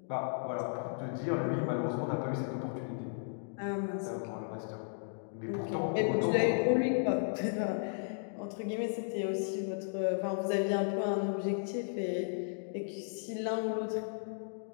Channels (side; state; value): right; silent; digital silence